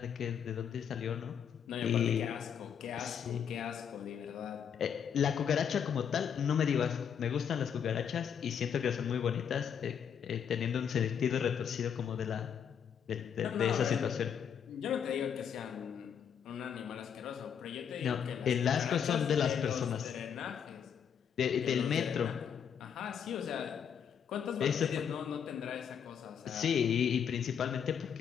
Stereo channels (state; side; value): quieter; right; 7.9 dB